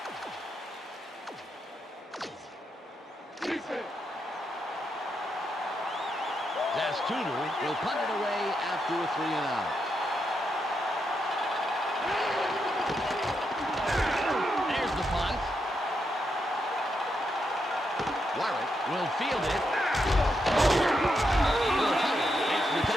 Tudor will punt it away after a 3-and-out. There's the punt. Warwick will field it. Makes the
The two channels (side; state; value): both; normal; correlation 0.82